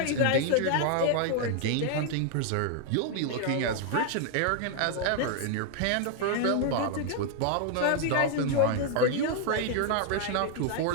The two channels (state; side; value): different; both; correlation 0.00